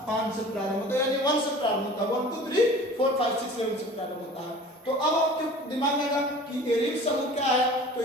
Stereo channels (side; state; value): both; normal; correlation 0.43